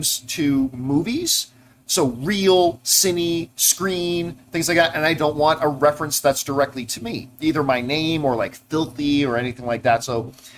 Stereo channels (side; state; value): both; identical; correlation 1.00